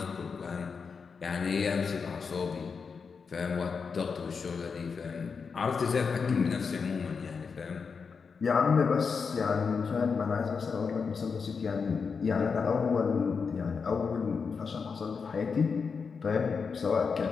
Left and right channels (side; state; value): right; quieter; 5.5 dB